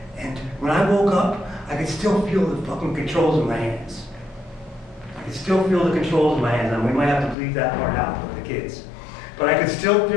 When I woke up, I could still feel the fucking controls in my hands. I could still feel the controls in my hands, and we might have to bleep that part out with the kids. But I could still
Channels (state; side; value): drops out; right; at 7.4 s